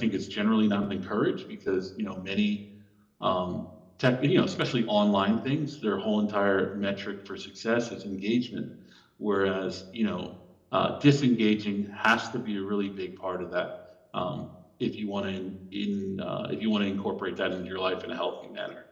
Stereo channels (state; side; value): identical; both; correlation 1.00